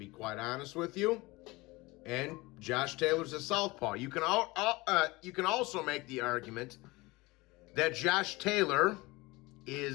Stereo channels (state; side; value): quieter; right; 22.4 dB